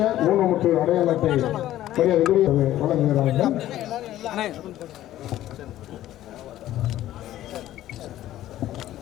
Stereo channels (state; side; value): quieter; right; 13.6 dB